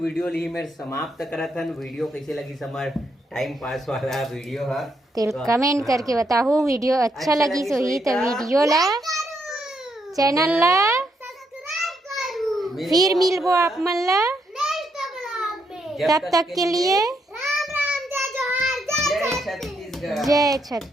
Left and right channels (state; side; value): normal; both; correlation 0.77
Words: ली मेरे समाप्त करा था। वीडियो कैसे लगी समार टाइम पास वाला वीडियो है तो कमेंट करके बताओ। वीडियो अच्छा लगी सो ही तो वीडियो ला चैनल ला फिर मिलबो आप मन ला। तब तक के लिए जय छत्तीसगढ़। जय